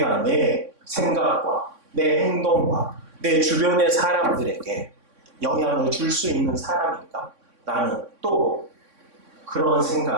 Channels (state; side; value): late; left; 3.6 ms